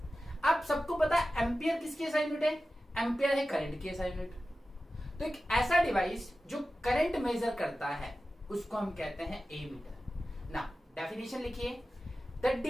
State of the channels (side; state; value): both; normal; correlation 0.94